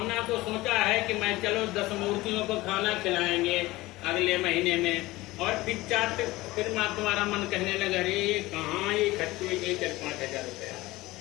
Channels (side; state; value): right; quieter; 19.3 dB